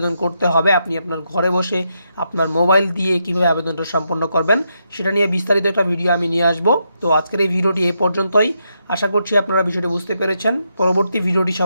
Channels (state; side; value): inverted; both; correlation -0.81